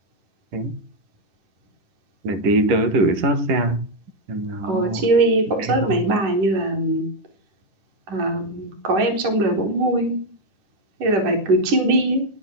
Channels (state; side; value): late; left; 10 ms